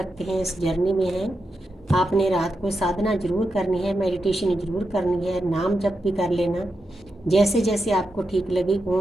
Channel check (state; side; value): normal; both; correlation 0.87